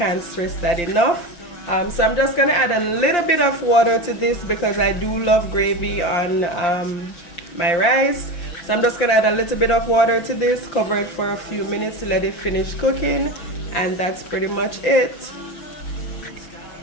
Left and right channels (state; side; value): late; right; 5.8 ms